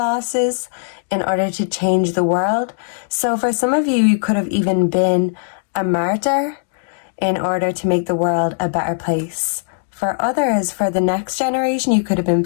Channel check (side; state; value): right; silent; digital silence